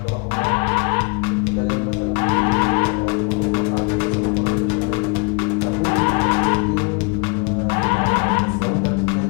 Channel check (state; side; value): quieter; right; 31.8 dB